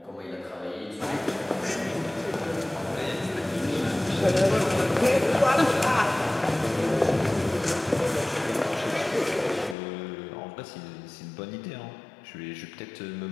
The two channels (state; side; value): drops out; right; at 9.8 s